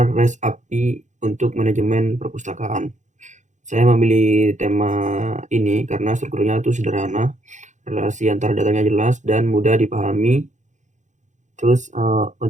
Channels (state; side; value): late; left; 0.35 ms